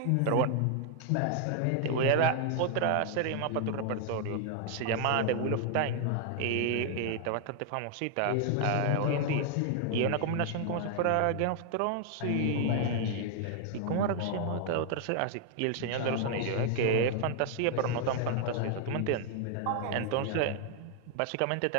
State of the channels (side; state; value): both; different; correlation 0.00